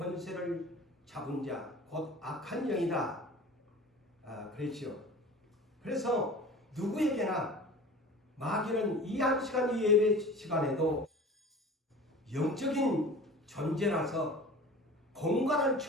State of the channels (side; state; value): both; normal; correlation 0.40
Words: 잡은 자, 곧 악한 영이다. 그랬죠. 그래서 누구에게나 마귀는 이 한 시간 이 예배 시간에도 영적인 존재라서 공간을